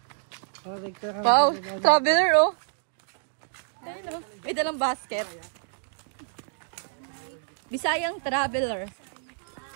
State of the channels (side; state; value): left; silent; digital silence